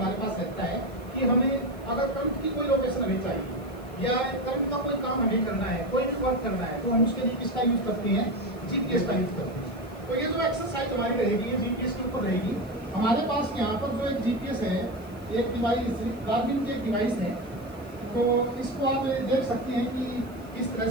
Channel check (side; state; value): left; noise; hiss, 26 dB below the sound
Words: पास रहता है कि हमें अगर करंट की कोई लोकेशन हमें चाहिए या करंट का कोई काम हमें करना है, कोई भी वर्क करना है, तो हम उसके लिए किसका यूज़ करते हैं, जीपीएस का यूज़ करते हैं। तो ये जो एक्सरसाइज हमारी रहेगी ये जीपीएस के ऊपर रहेगी। हमारे पास यहाँ पर जो एक जीपीएस है, एक डिवाइस गार्मिन की एक डिवाइस है, तो इसको आप देख सकते हैं कि किस